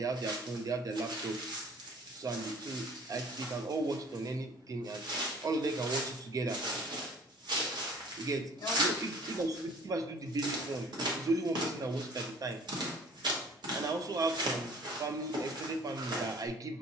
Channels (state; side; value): normal; both; correlation 0.49